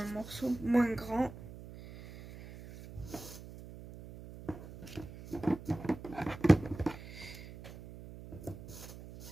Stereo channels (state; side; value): noise; right; hum, 14 dB below the sound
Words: morceau moins grand.